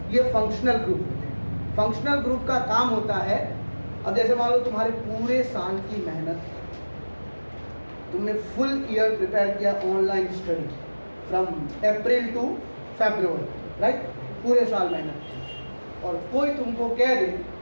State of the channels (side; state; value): both; inverted; correlation -1.00